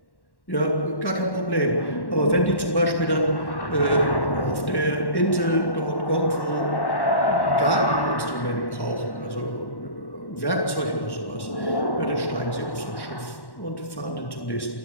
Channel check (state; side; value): late; right; 1.1 ms